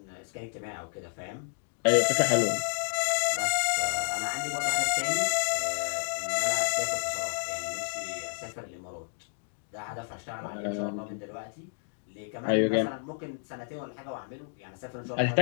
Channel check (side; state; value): right; silent; 58 dB below the other